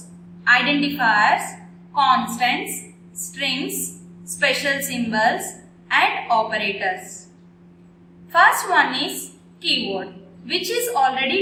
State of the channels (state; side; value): identical; both; correlation 1.00